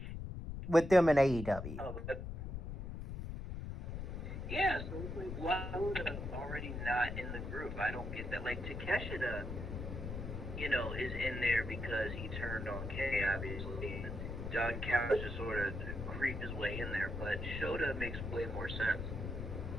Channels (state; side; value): noise; left; rumble, 6 dB below the sound